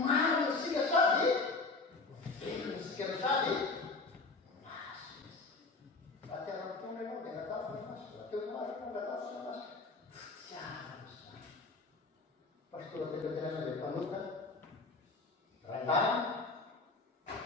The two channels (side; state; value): right; quieter; 3.7 dB